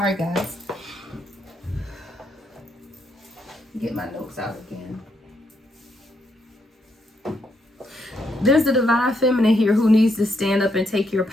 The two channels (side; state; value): both; normal; correlation 0.77